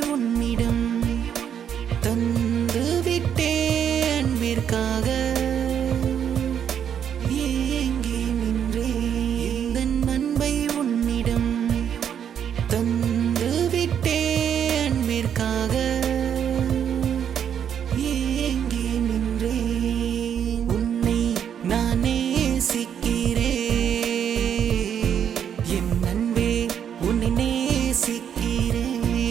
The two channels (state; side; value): quieter; left; 8.7 dB